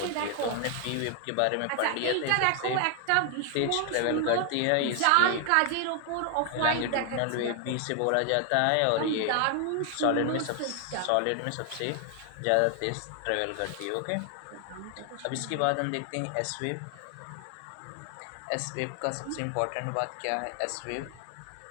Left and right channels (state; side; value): different; both; correlation 0.00